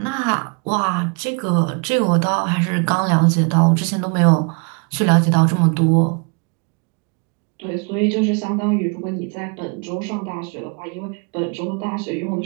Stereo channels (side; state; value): left; quieter; 35.0 dB